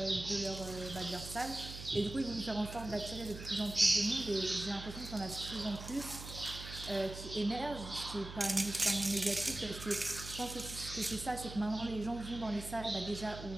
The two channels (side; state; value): right; noise; hum, 11 dB below the sound